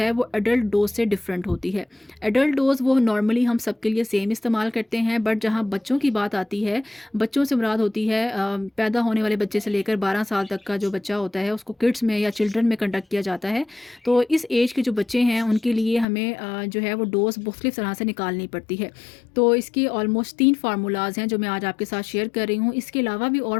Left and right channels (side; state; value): right; drops out; at 16.1 s